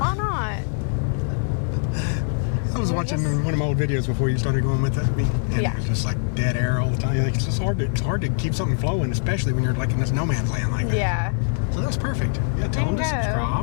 not? I was watching one of my old videos before you started going with it, and Yeah. it was just like dead air all the time. Like, it's just hard to keep something flowing, especially when you're like in this no man's land like that. Yeah. So that's perfect. Yeah, tell them to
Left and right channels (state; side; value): silent; right; 63 dB below the other